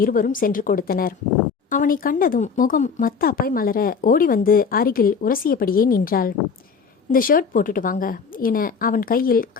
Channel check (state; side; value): quieter; right; 5.7 dB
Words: இருவரும் சென்று கொடுத்தனர். அவனை கண்டதும் முகம் மத்தாப்பாய் மலர ஓடி வந்து அருகில் உரசியபடியே நின்றாள். இந்த ஷர்ட் போட்டுட்டு வாங்க என அவன் கையில்